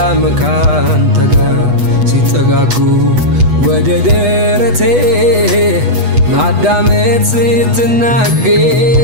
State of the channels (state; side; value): late; left; 8.2 ms